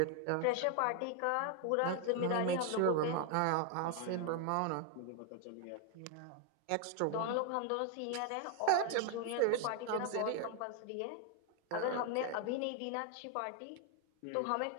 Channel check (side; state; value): both; different; correlation 0.01